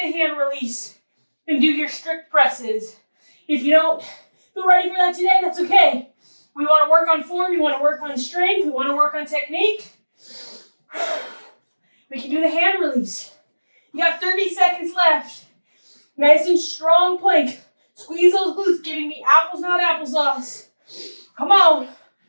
the hand release and do your strict presses. If you don't feel ready for that today, that's okay. We want to work on form, we want to work on strength, we want to work on technique. We can do the hand release. You got 30 seconds left. Nice and strong plank. Squeeze those glutes, giving me apples, not applesauce. Come on.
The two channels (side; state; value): both; inverted; correlation -1.00